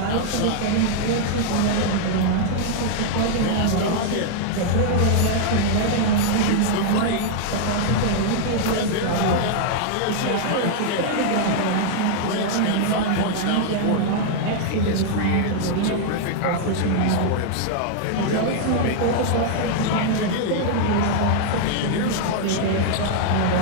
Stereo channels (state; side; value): different; both; correlation -0.01